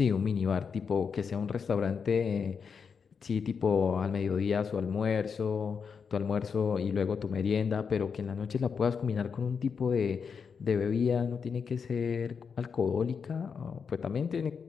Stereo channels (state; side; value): quieter; right; 6.1 dB